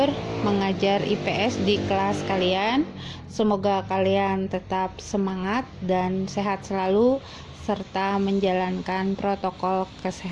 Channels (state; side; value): identical; both; correlation 1.00